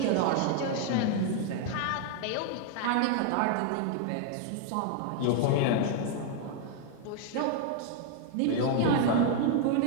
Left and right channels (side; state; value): both; different; correlation 0.00